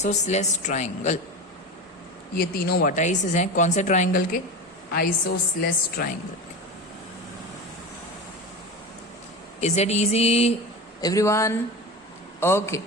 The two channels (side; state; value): both; normal; correlation 0.26